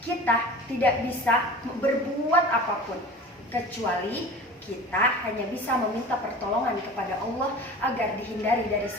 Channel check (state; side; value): normal; both; correlation 0.38